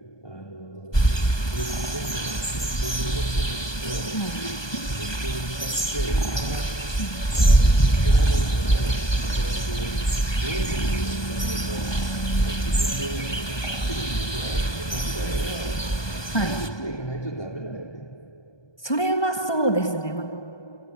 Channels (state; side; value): late; right; 1.2 ms